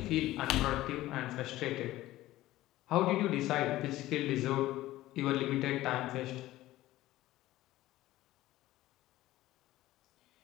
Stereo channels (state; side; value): quieter; right; 16.1 dB